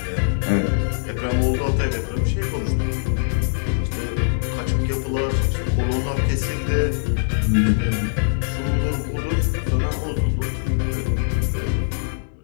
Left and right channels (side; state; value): right; silent; digital silence